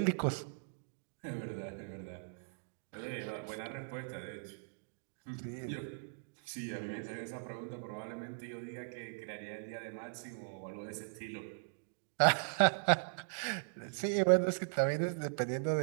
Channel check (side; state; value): left; silent; digital silence